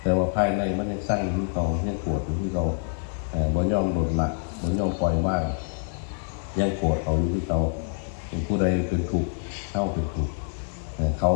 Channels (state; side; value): silent; right; digital silence